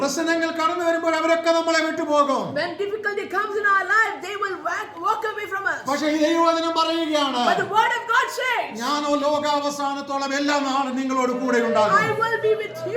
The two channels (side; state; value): both; identical; correlation 1.00